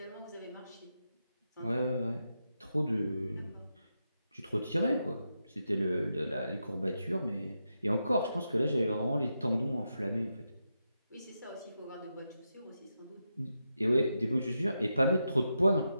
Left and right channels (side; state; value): both; inverted; correlation -0.86